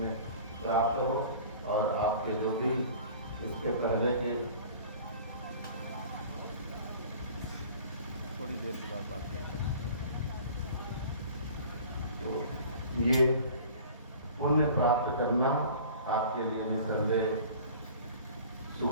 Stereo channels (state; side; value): inverted; both; correlation -0.45